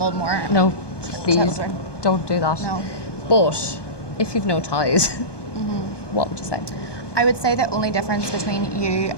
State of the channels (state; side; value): late; right; 1.2 ms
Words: more. No, please children. don't do that. No. But if you've no ties, what would you say? I would say the only difference between you